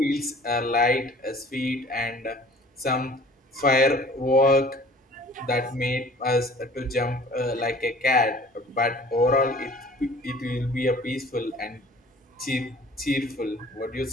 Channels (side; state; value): both; normal; correlation 0.49